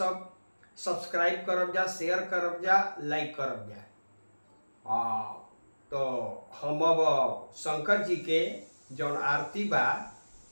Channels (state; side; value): inverted; both; correlation -1.00